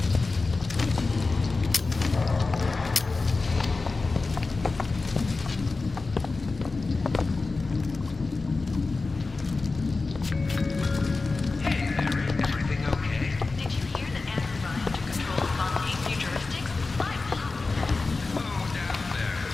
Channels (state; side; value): quieter; right; 3.8 dB